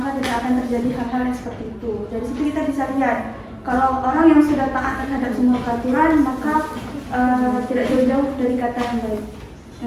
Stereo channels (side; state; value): both; identical; correlation 1.00